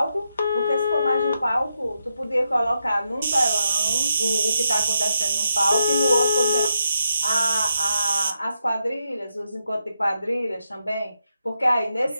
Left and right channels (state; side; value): inverted; both; correlation -0.83